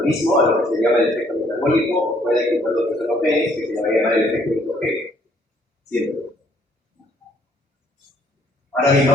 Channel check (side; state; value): both; normal; correlation 0.65